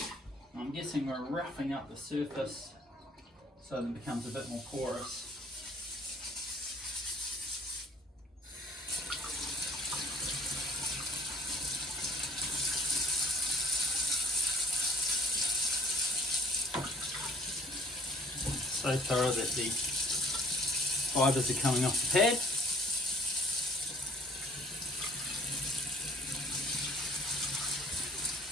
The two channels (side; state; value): both; normal; correlation 0.54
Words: I'm guessing we're roughing up the surface so that it becomes a bit more porous. So thorough that the fibres are coming off the pad.